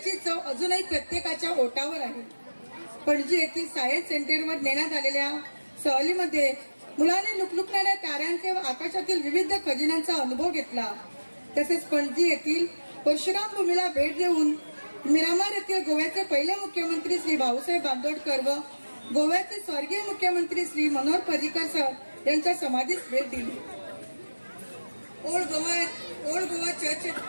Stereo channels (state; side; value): inverted; both; correlation -1.00